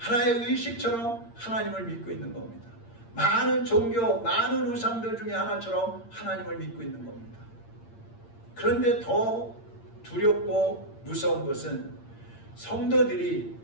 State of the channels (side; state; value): right; late; 8.7 ms